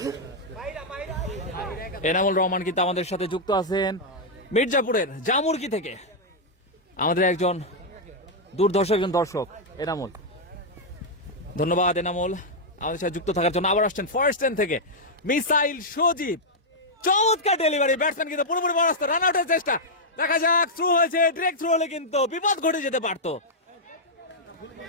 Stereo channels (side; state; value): both; normal; correlation -0.04